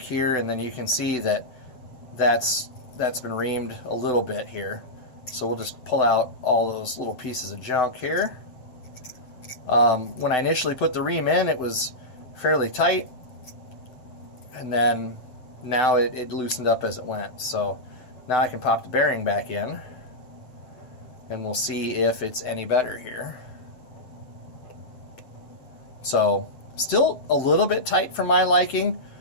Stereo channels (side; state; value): right; late; 7.9 ms